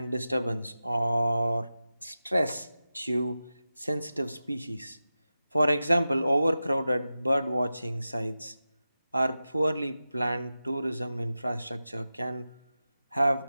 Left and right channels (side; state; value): both; inverted; correlation -0.93